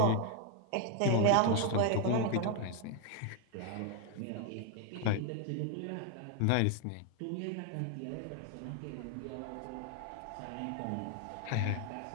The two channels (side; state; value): both; different; correlation 0.01